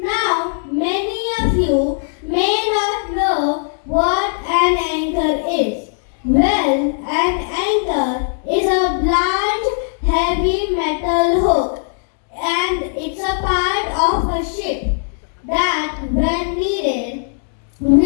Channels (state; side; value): silent; right; digital silence